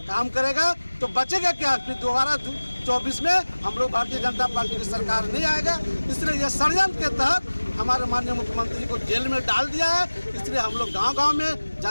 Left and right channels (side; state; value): both; inverted; correlation -1.00